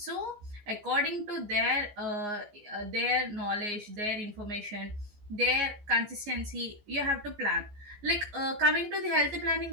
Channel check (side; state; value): left; late; 14 ms